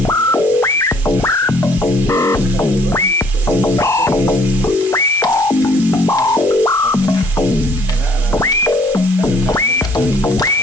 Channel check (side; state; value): both; normal; correlation 0.61